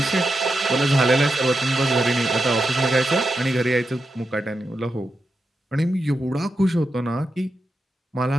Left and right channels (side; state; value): both; normal; correlation 0.87